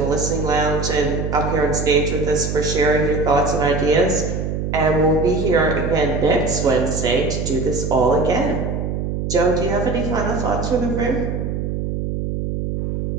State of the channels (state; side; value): noise; right; hum, 3 dB below the sound